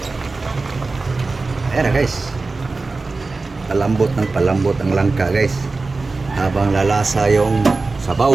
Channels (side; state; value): left; quieter; 3.7 dB